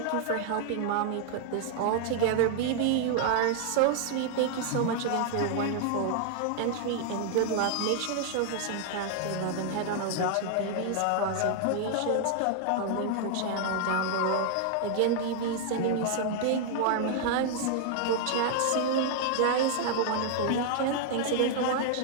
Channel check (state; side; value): different; both; correlation 0.00